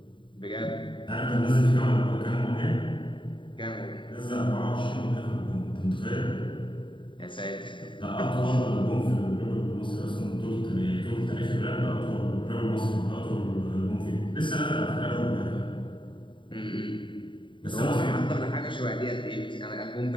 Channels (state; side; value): late; right; 0.24 ms